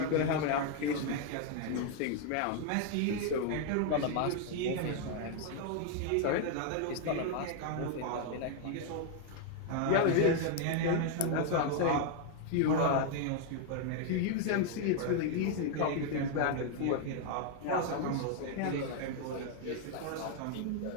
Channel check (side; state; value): both; different; correlation 0.01